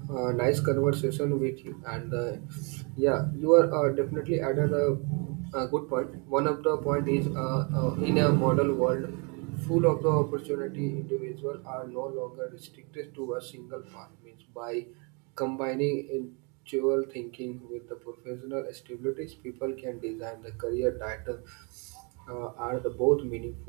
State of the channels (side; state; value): left; quieter; 33.3 dB